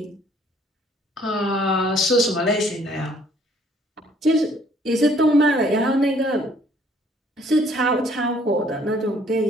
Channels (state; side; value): normal; both; correlation 0.61